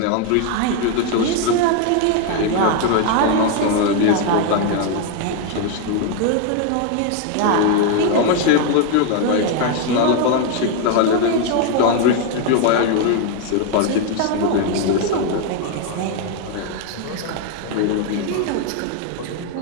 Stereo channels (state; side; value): different; both; correlation 0.01